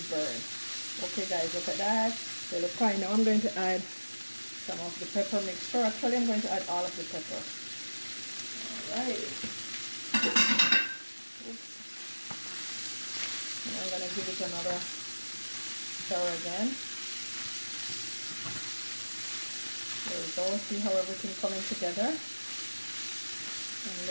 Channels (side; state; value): both; inverted; correlation -1.00